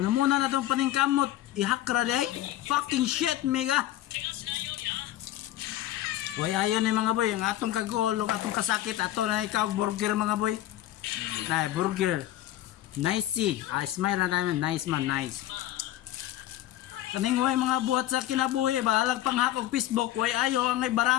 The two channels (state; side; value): quieter; right; 14.0 dB